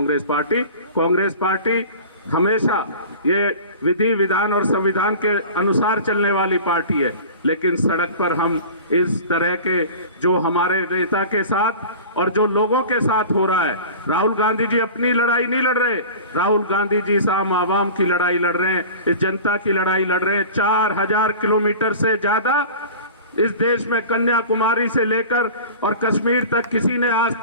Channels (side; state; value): both; inverted; correlation -0.38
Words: पार्टी। कांग्रेस पार्टी हमेशा ये विधि विधान और संविधान के अनुसार चलने वाली पार्टी है। लेकिन सड़क पर हम इस तरह के जो हमारे नेता के साथ और जो लोगों के साथ हो रहा है, राहुल गांधी जी अपनी लड़ाई नहीं लड़ रहे, राहुल गांधी जी आम आवाम की लड़ाई लड़ रहे हैं, इस जनता की लड़ाई लड़ रहे हैं। 4000 किलोमीटर से ज्यादा इस देश में कन्याकुमारी से लेकर और कश्मीर तक किसी ने आज